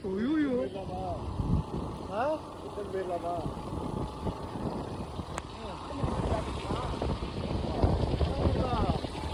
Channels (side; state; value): both; identical; correlation 1.00